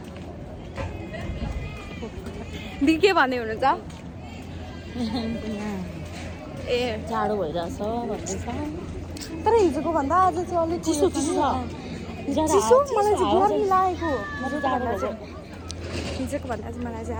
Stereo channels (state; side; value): identical; both; correlation 1.00